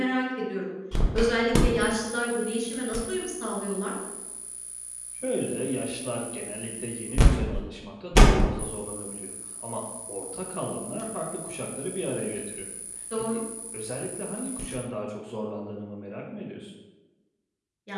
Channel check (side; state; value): both; identical; correlation 1.00